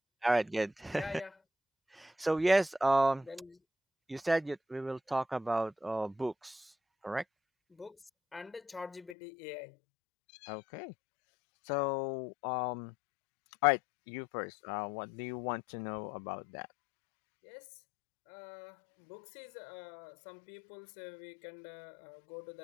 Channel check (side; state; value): right; drops out; at 9.2 s